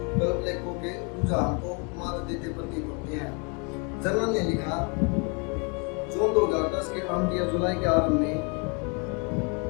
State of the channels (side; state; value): right; quieter; 33.5 dB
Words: कल्प लेखों के रुझान को मात देते प्रतीत होते हैं। जर्नल ने लिखा, जून 2010 के अंत या जुलाई के आरंभ में